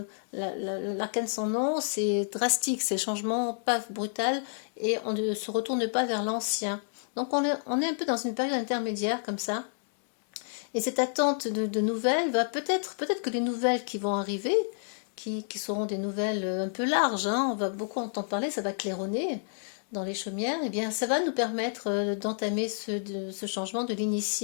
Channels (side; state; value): right; silent; 58 dB below the other